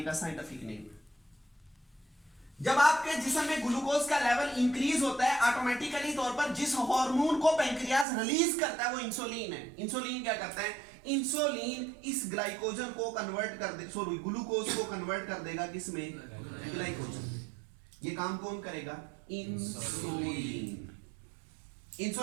का साइंटिफिक नेम है। जब आपके जिस्म में ग्लूकोज का लेवल इंक्रीज होता है, ऑटोमेटिकली तौर पर जिस हार्मोन को पेंक्रियास रिलीज करता है वो इंसुलिन है। इंसुलिन क्या करता है? इंसुलिन इस ग्लाइकोजन को कन्वर्ट कर दे, सॉरी ग्लूकोज को कन्वर्ट कर देगा किसमें? ग्लाइकोजन। ये काम कौन करेगा? इंसुलिन।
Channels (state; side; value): drops out; left; at 8.1 s